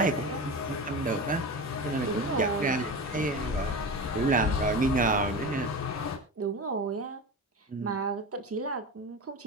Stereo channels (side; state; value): both; normal; correlation 0.27